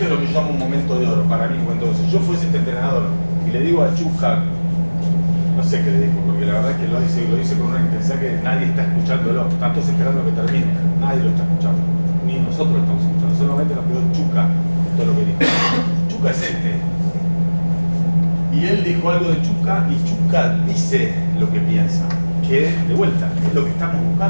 es lo que yo llamo un momento de oro para mí. Cuando yo fuese este entrenador y le digo a Chusca, no sé qué le digo, porque la verdad es que lo dice con una intensidad que nadie está escuchándolo. Están todos esperando que termine, nadie lo está escuchando, ni nosotros lo estamos escuchando. Solamente nos quedó Chusca todo lo que dijo. Chusca es este. Y él dijo algo de Chusca y Chusca dice lo que piensa, que de vuelta es lo que estamos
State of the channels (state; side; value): inverted; both; correlation -1.00